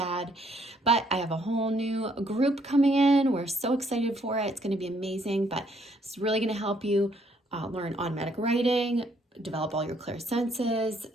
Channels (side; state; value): both; normal; correlation 0.68